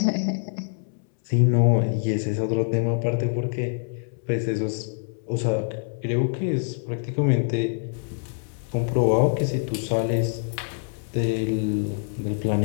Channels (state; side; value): silent; right; 62 dB below the other